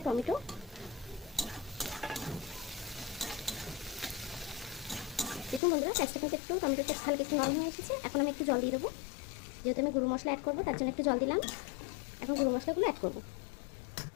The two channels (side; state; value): right; drops out; at 5.6 s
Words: টমেটো। দেখুন বন্ধুরা, পেঁয়াজটা কিন্তু একটু টমেটোটা হালকা একটু নরম হয়ে এসেছে। এখন আমি একটু জল দিয়ে দেবো, যেহেতু আমি গুঁড়ো মশলা অ্যাড করবো তার জন্য একটু জল দিলাম। এখন গুঁড়ো মশলাগুলো অ্যাড করবো।